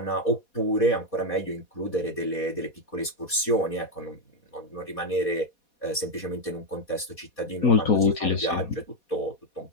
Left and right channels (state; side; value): late; right; 4.2 ms